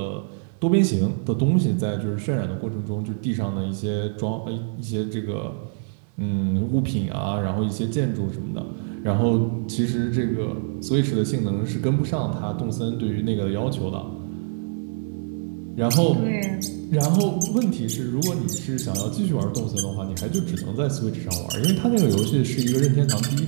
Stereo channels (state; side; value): silent; left; 62 dB below the other